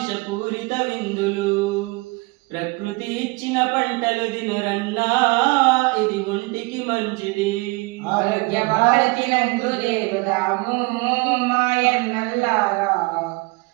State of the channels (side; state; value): left; quieter; 25.7 dB